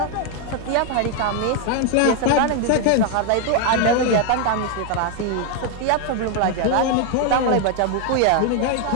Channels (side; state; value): both; different; correlation 0.01